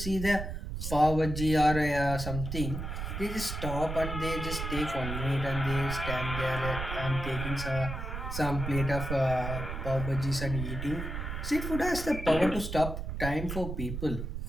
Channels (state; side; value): noise; right; rumble, 5 dB below the sound